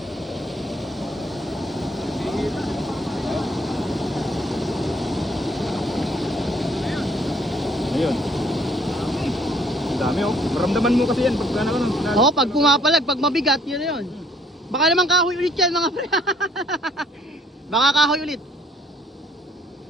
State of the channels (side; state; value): both; normal; correlation 0.62